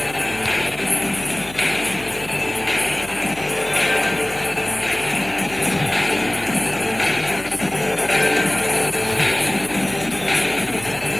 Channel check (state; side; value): noise; left; hum, 19 dB below the sound